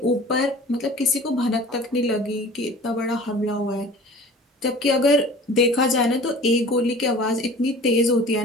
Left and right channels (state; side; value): normal; both; correlation 0.43